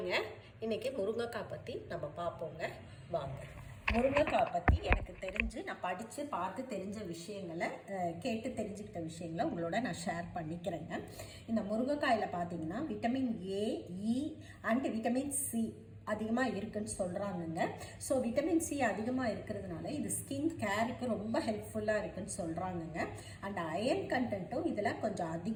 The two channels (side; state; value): both; identical; correlation 1.00